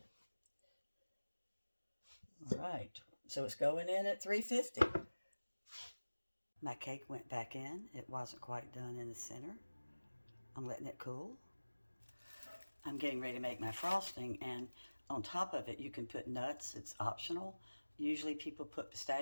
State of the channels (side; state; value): both; inverted; correlation -1.00